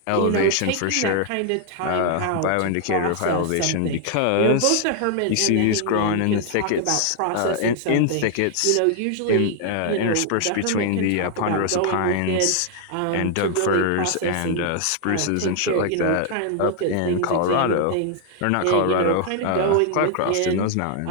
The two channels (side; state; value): both; different; correlation 0.00